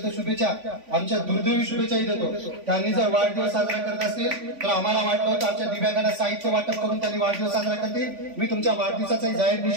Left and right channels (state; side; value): late; left; 3.5 ms